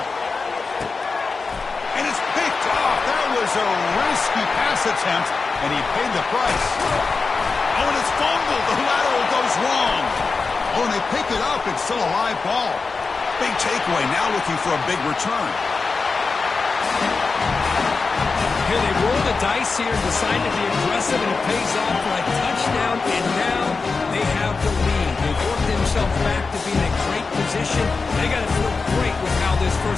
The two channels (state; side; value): quieter; right; 4.4 dB